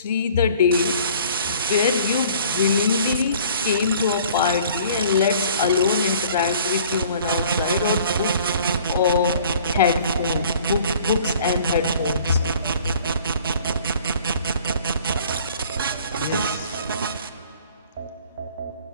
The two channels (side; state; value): both; inverted; correlation -0.52